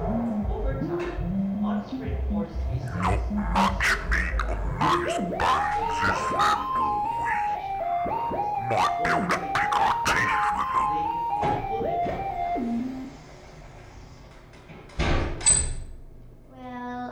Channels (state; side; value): identical; both; correlation 1.00